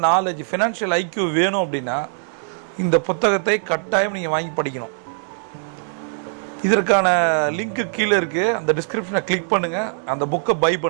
knowledge, financial IQ வேணும் அப்படின்னா இந்த புத்தகத்தை கட்டாயம் நீங்கள் வாங்கி படிக்கணும். இதற்கான லிங்க்கு கீழே இருக்குது, அந்த டிஸ்கிரிப்ஷனை கிளிக் பண்ணுங்கள், அந்த புக்கை பை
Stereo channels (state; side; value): silent; left; digital silence